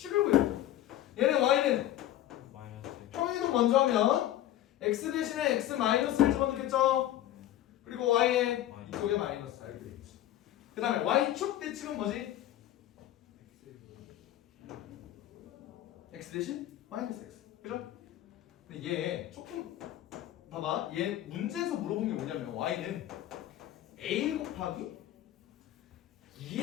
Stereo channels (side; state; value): right; quieter; 13.2 dB